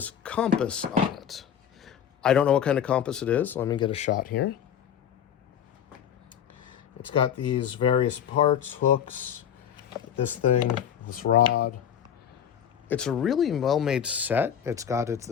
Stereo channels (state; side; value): quieter; right; 9.0 dB